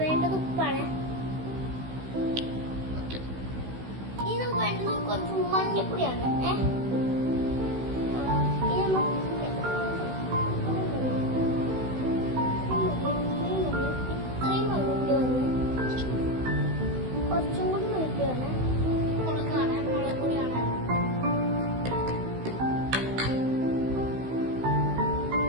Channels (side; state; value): left; late; 16 ms